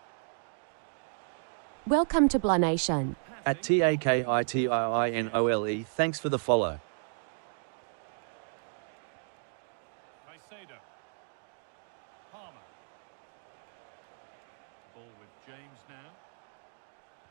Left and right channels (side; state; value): left; silent; 56 dB below the other